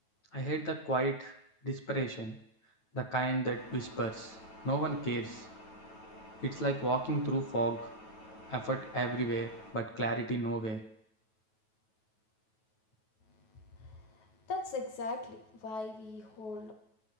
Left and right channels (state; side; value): late; right; 9.2 ms